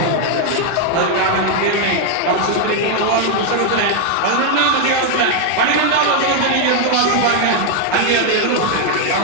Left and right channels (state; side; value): different; both; correlation 0.00